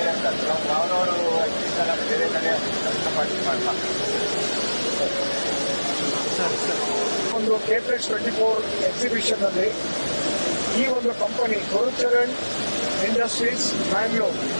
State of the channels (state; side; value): inverted; both; correlation -1.00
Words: ಯಾವ್ದಾದ್ರು ಎಕ್ಸಿಬಿಷನ್ ಬೇರೆ ಕಡೆ ಪಾರ್ಟಿಸಿಪೇಟ್ ಮಾಡ್ತಿದ್ದೇವೆ. ಒಂದು KPEX 24 ಎಕ್ಸಿಬಿಷನ್ ಅಲ್ಲಿ ಈ ಒಂದು ಕಂಪನಿ ಗುರುಚರಣ್ ಇಂಡಸ್ಟ್ರೀಸ್ ಬ್ಯಾಂಗ್ಳೂರ್